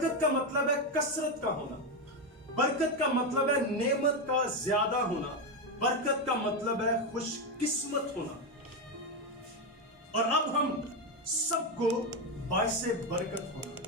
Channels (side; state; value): both; normal; correlation 0.09